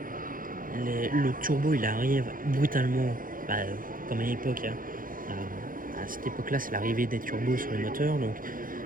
le turbo il arrive brutalement, comme à l'époque hein. À cette époque là c'est l'arrivée des turbos sur les moteurs, donc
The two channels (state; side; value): late; left; 0.40 ms